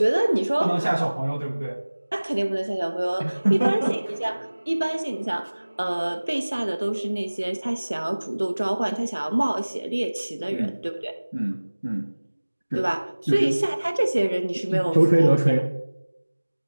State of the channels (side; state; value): both; inverted; correlation -1.00